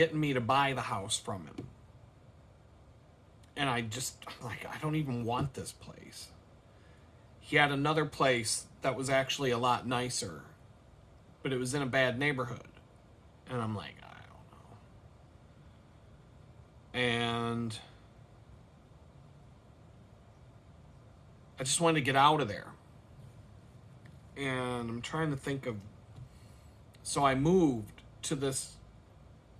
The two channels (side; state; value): both; identical; correlation 1.00